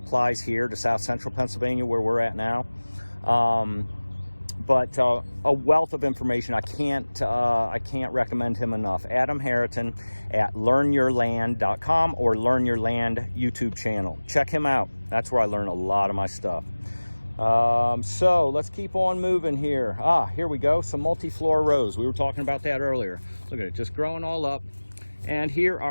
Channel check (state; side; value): inverted; both; correlation -1.00